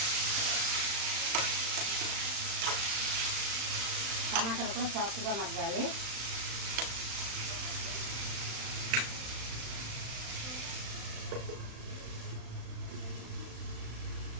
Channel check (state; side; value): late; left; 36 ms